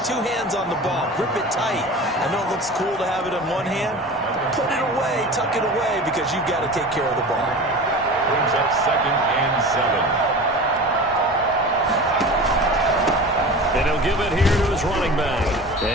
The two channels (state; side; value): normal; both; correlation 0.35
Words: two hands on the ball. Grip it tight. I know it looks cool to have it in one hand. Put it away. Tuck it away because you've got to take care of the ball. Brings up second and 7. And he'll give it here to his running back.